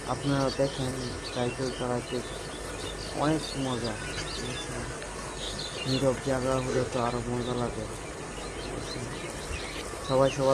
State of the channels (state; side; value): identical; both; correlation 1.00